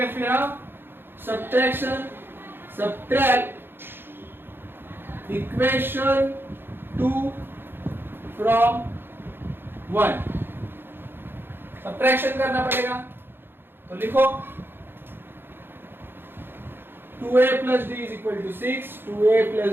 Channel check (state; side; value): late; left; 0.10 ms